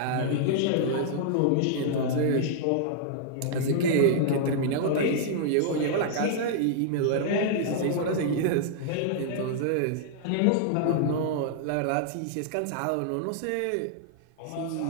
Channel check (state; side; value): different; both; correlation -0.01